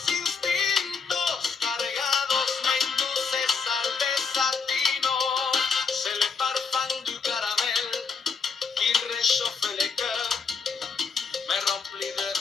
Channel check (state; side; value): quieter; right; 5.3 dB